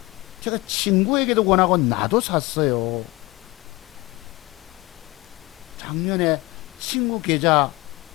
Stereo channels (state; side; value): quieter; right; 21.9 dB